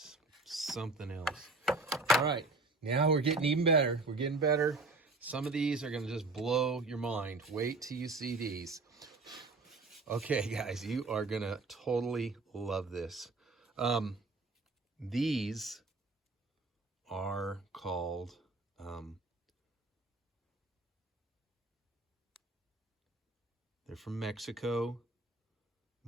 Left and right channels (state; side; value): quieter; left; 3.3 dB